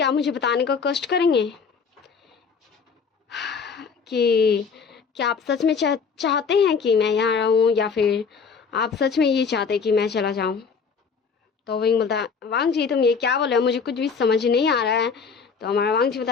मुझे बताने का कष्ट करेंगे कि क्या आप सच में चाहते हैं कि मैं यहाँ रहूँ या फिर आप सच में ये चाहते कि मैं चला जाऊँ? तो विंग बोलता वांगजी तुम ये क्या बोल रहे हो, मुझे कुछ भी समझ नहीं आ रहा है। तो हमारा वांगजी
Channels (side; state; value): right; quieter; 5.7 dB